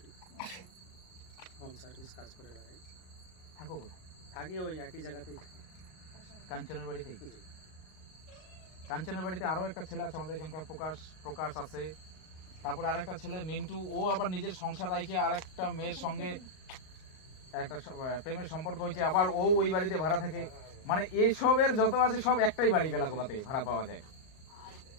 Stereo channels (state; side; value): late; right; 38 ms